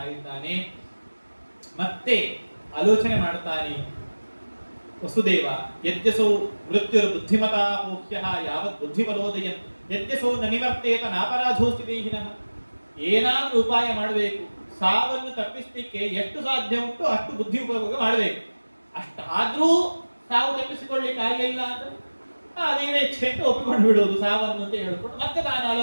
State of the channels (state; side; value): inverted; both; correlation -1.00